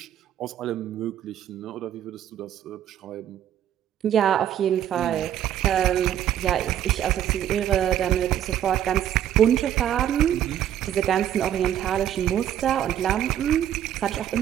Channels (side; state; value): left; quieter; 10.9 dB